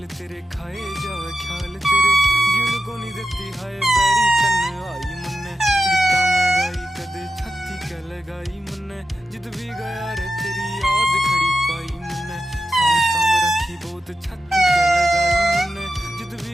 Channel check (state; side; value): normal; both; correlation 0.90